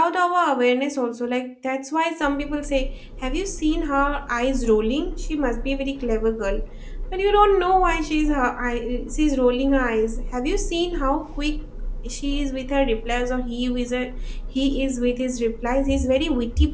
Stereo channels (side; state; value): both; identical; correlation 1.00